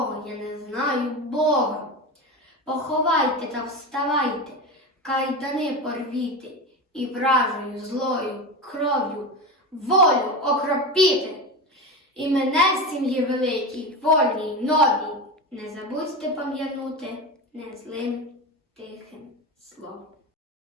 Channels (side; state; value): both; normal; correlation 0.22